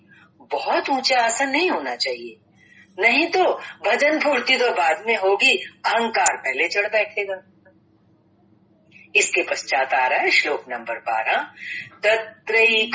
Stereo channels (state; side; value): identical; both; correlation 1.00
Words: बहुत ऊंचा आसन नहीं होना चाहिए, नहीं तो भजन फूर्ति तो बाद में होगी, अहंकार पहले चढ़ बैठेगा। इसके पश्चात आ रहा है श्लोक नंबर 12,